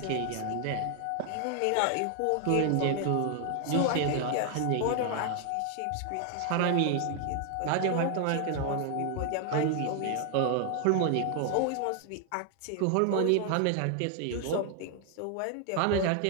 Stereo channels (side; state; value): both; different; correlation 0.00